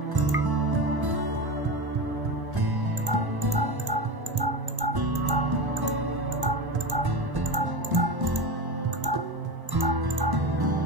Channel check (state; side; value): late; left; 1.1 ms